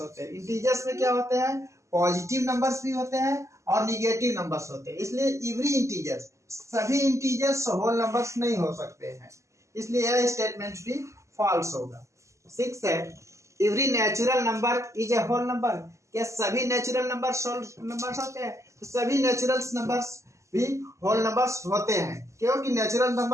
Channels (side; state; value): left; late; 0.14 ms